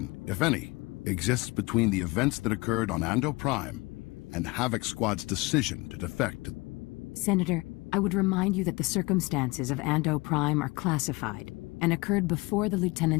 if any, exists between the events that occurred on Ando Prime and Havoc Squad's decision to defect? Senator, I would remind you that the circumstances of Ando Prime are classified and occurred before the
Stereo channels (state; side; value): quieter; right; 24.3 dB